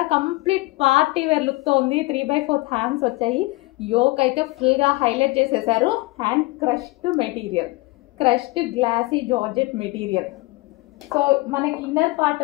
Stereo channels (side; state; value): right; quieter; 22.6 dB